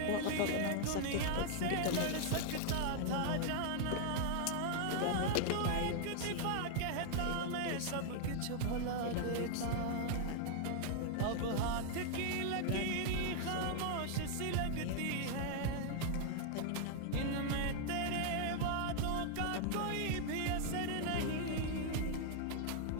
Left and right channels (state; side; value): different; both; correlation 0.00